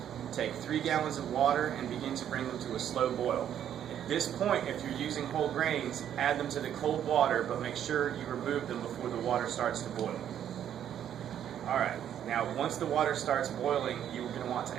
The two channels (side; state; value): left; quieter; 10.0 dB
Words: Take 3 gallons of water and begin to bring them to a slow boil. At this point, if you're using whole grains, add them to the cold water, but make sure you remove them before the water starts to boil. Alright, now once the water starts boiling, you're going to want to